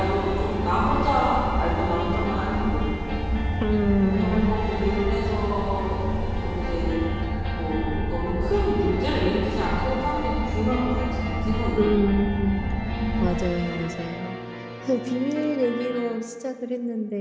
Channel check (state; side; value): identical; both; correlation 1.00